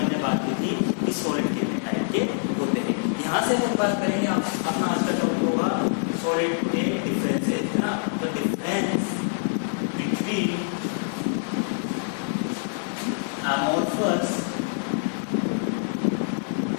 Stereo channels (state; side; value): silent; right; digital silence